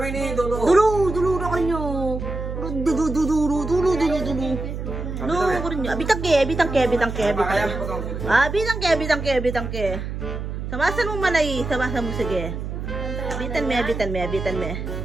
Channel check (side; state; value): right; noise; hum, 6 dB below the sound